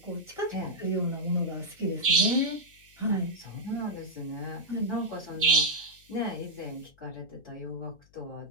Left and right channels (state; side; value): noise; left; hum, 29 dB below the sound